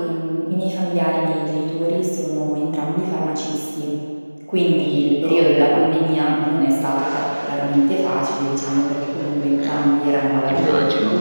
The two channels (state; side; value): inverted; both; correlation -1.00